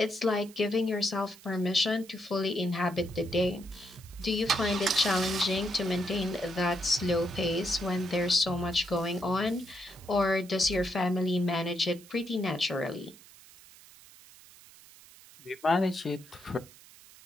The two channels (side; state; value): right; noise; hiss, 22 dB below the sound